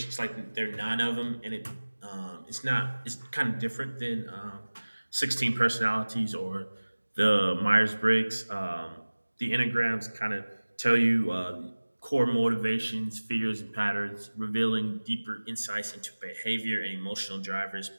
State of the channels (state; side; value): inverted; both; correlation -1.00